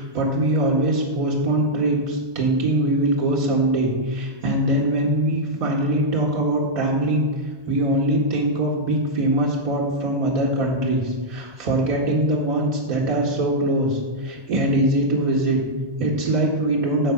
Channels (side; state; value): left; late; 1.2 ms